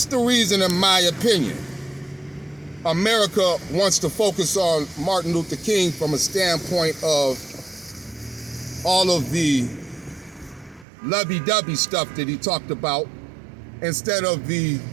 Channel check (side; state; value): left; drops out; at 10.9 s